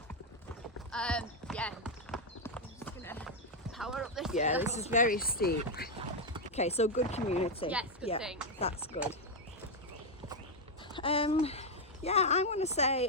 Yeah, I'm just gonna power up this Yeah, hill. this is very steep. Okay, so good community. Yes, good yeah, thing. That's good. Yeah, I'm going to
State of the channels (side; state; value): both; normal; correlation 0.02